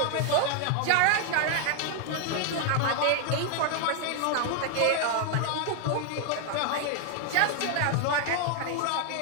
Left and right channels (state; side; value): different; both; correlation 0.00